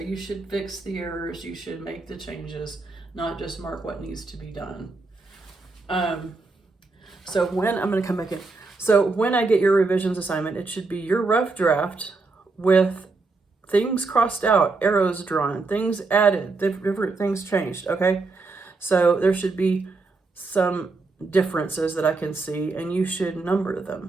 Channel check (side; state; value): left; quieter; 3.8 dB